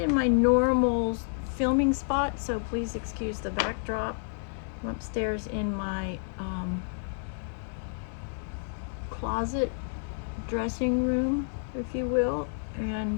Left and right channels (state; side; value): silent; right; digital silence